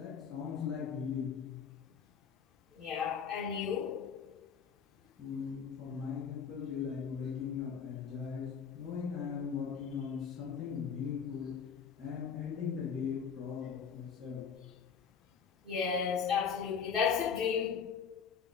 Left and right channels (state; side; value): quieter; right; 6.7 dB